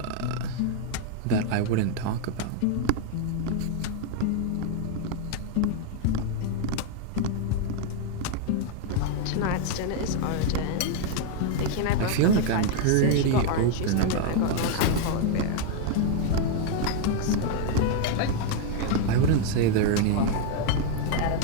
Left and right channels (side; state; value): both; different; correlation 0.00